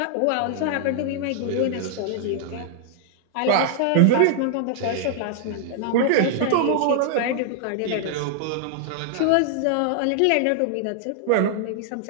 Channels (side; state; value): both; different; correlation -0.01